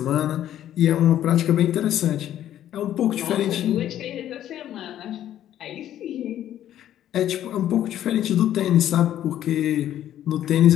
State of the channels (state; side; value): quieter; right; 11.6 dB